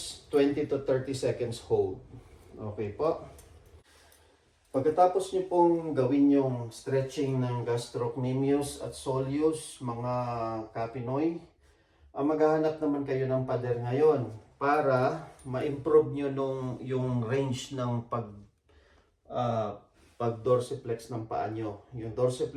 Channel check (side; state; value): both; identical; correlation 1.00